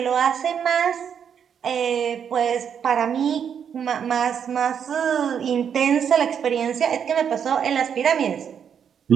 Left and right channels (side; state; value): left; quieter; 7.8 dB